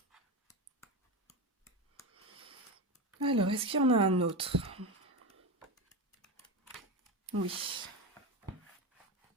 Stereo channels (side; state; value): both; normal; correlation 0.18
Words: Alors, est-ce qu'il y en a un autre? Oui.